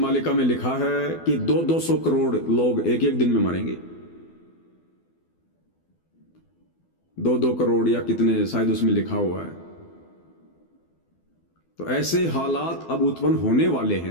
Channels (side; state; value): right; late; 12 ms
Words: में लिखा है कि 200 करोड़ लोग एक एक दिन में मरेंगे, 2 करोड़ या कितने शायद उसमें लिखा हुआ है। तो ऐसे हालात अब उत्पन्न होने वाले